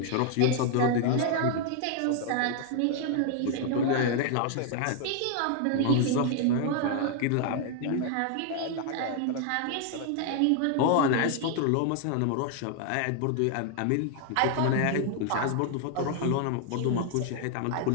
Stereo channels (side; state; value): both; different; correlation 0.00